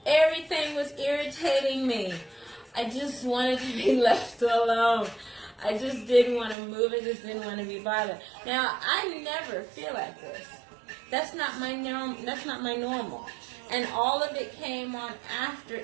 Everything was irritating me. I just wanted to be left alone. I just didn't want to move. I just didn't want to be bothered. Now, I never feel like this. That's not my normal. And all of it came on after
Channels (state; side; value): drops out; left; at 6.6 s